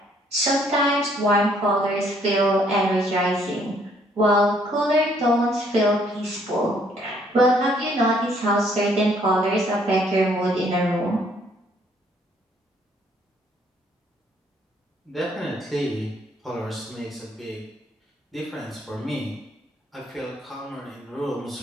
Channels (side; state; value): both; normal; correlation 0.65